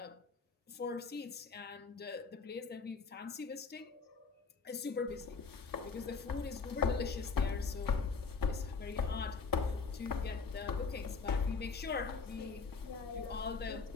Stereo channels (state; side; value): quieter; right; 4.9 dB